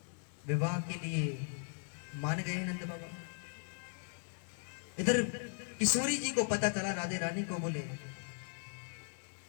विवाह के लिए मान गए नंद बाबा। इधर किशोरी जी को पता चला, राधे रानी को, बोले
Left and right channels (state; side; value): silent; right; 52 dB below the other